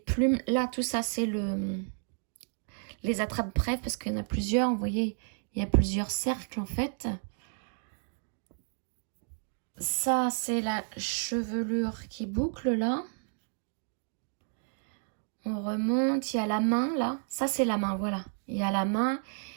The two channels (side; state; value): left; silent; 57 dB below the other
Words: Là, tout ça, c'est les attrape-brèves parce qu'il y en a plusieurs. Vous voyez, il y a plusieurs cercles en fait. Ça, c'est la chevelure qui boucle là. On remonte. Il y a la main là. Ça, c'est la main, voilà. Il y a la main